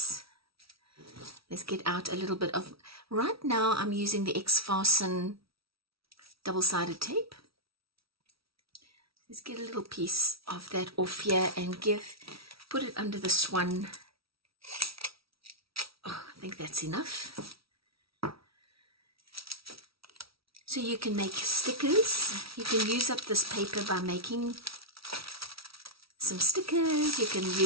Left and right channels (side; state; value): left; late; 0.75 ms